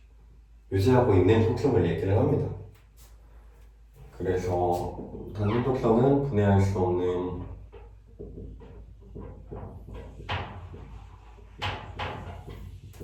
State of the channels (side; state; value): both; identical; correlation 1.00